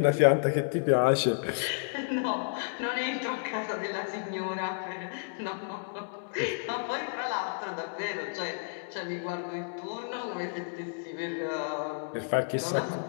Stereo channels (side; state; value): right; silent; digital silence